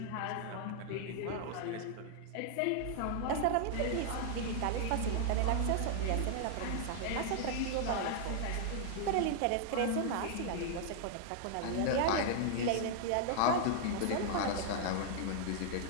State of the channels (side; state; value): both; different; correlation -0.01